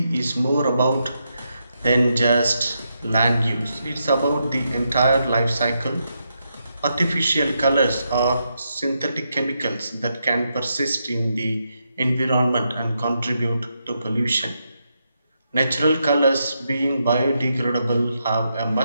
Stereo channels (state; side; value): inverted; both; correlation -0.82